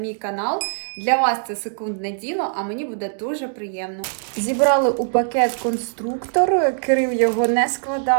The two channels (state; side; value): silent; left; digital silence